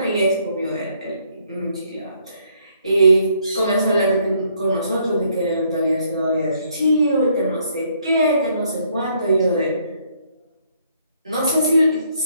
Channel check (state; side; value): inverted; both; correlation -0.68